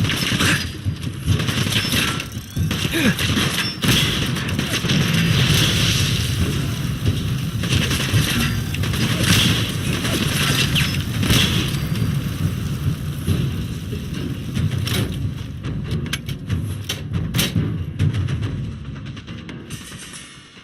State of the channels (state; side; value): identical; both; correlation 1.00